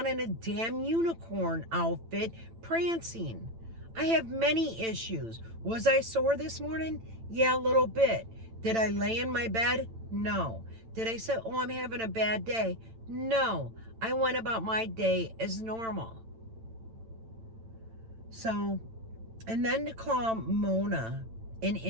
in a damn unicorn outfit, prancing. I have many issues. Was I sore this morning? Yeah, a little bit. Did I lay in my bed? No. Did I say, oh, I'm having a bad day? No. I went about my day as normal. So, and then to call Mona an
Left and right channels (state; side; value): late; left; 8.9 ms